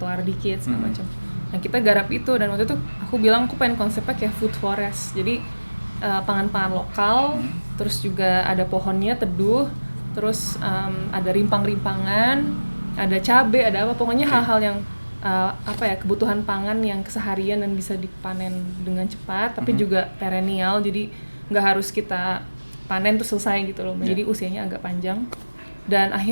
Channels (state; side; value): inverted; both; correlation -1.00